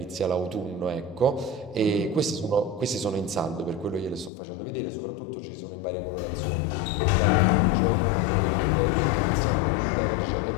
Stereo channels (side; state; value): right; drops out; at 4.3 s